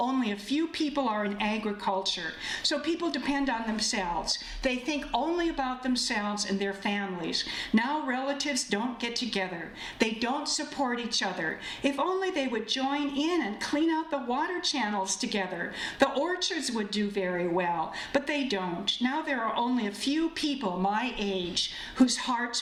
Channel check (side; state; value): both; identical; correlation 1.00